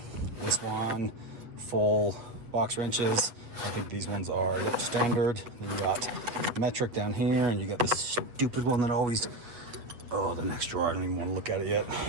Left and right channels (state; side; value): late; left; 8.1 ms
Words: This one, full box wrenches. I think these ones are standard. Then you got metric down here, and you got this stupid one that always, oh, the next drawer, I don't even want to look at it yet.